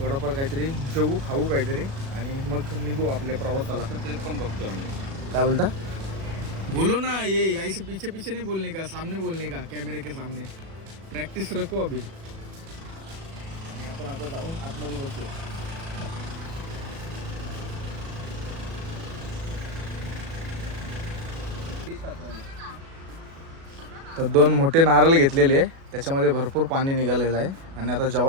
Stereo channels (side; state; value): left; late; 36 ms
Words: काहीतरी जेवू खाऊ काहीतरी. आणि मग निघू आपल्या प्रवासाला. ते पण बघतो आम्ही. काय बोलता. बोलो ना. ये ऐसे पीछे पीछे नहीं बोलने का, सामने बोलने का, कैमरे के सामने. प्रॅक्टिस रखो अभी. आणि आपण आता जाऊन आतमध्ये बसूया. तर 2 मोठे नारळ घेतलेले आहे. त्याच्यामध्ये भरपूर पाणी निघालेलं आहे. आणि आता